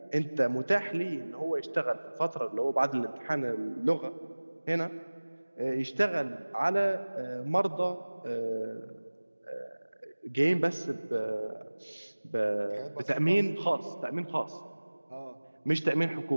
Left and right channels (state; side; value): inverted; both; correlation -1.00